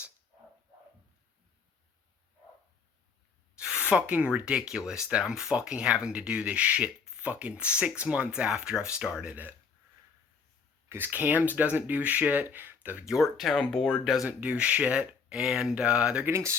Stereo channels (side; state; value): right; quieter; 5.6 dB